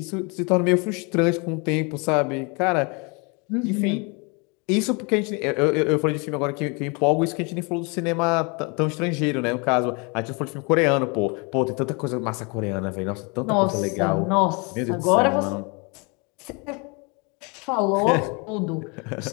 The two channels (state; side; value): quieter; right; 31.2 dB